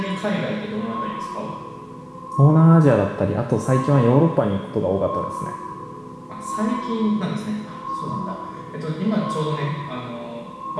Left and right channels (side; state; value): both; identical; correlation 1.00